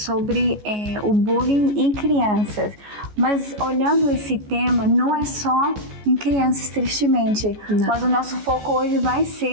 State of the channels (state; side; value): late; left; 14 ms